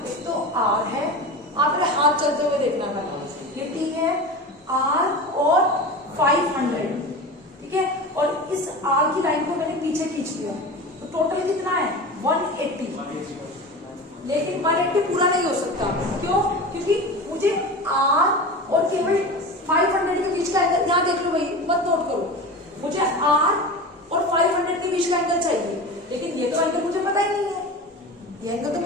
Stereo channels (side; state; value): both; normal; correlation 0.30